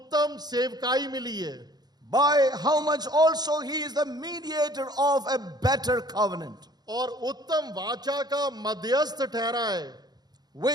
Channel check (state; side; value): late; left; 0.19 ms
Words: सेवकाई मिली है। By how much also he is the mediator of a better covenant, और उत्तम वाचा का मध्यस्थ ठहरा है,